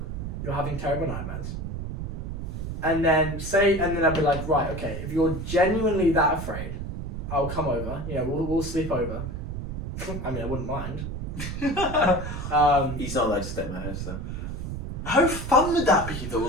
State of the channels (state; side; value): noise; right; rumble, 5 dB below the sound